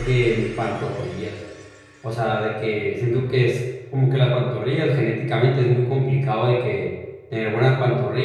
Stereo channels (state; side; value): identical; both; correlation 1.00